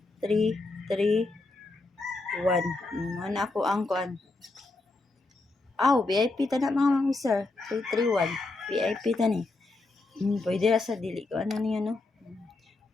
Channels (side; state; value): right; quieter; 3.3 dB